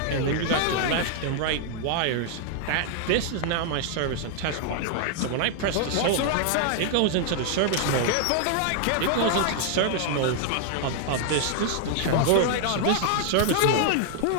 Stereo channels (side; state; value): both; different; correlation 0.00